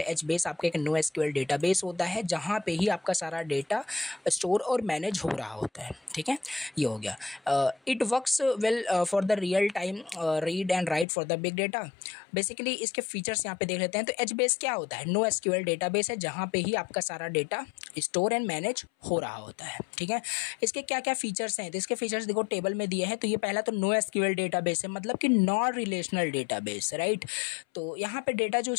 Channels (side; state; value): right; drops out; at 11.1 s